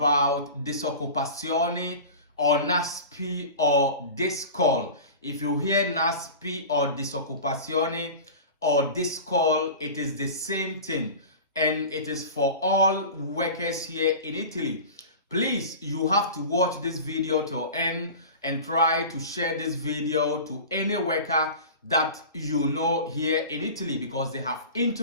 DISOCCUPAZIONE or NASPI or DISCOL. If you hear NASPI or DISOCCUPAZIONE or DISCOL, it is the same thing, and it is for all workers here in Italy. Please, you have to watch this video till end and try to share this video to any worker that you know here in Italy, because they have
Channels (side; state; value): both; inverted; correlation -0.34